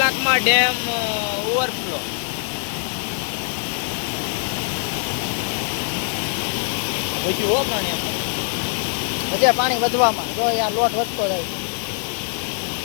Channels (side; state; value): right; silent; 56 dB below the other